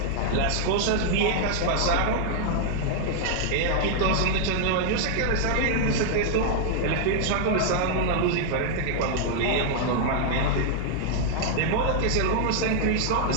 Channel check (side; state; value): both; different; correlation 0.00